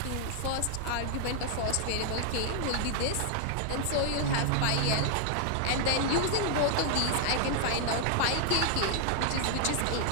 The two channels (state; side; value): different; both; correlation 0.00